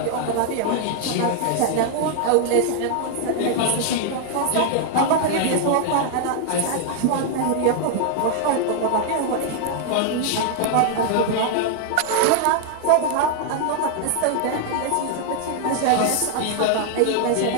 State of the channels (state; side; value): different; both; correlation 0.00